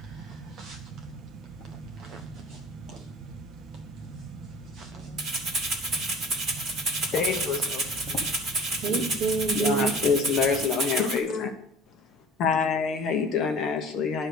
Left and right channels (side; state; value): both; normal; correlation 0.44